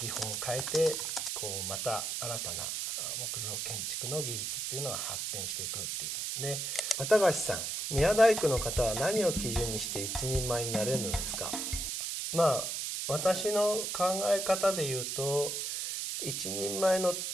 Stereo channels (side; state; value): right; noise; hiss, 2 dB below the sound